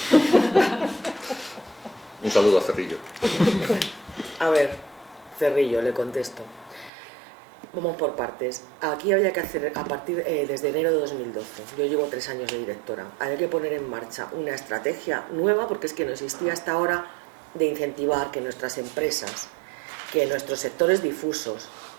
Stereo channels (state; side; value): drops out; left; at 6.9 s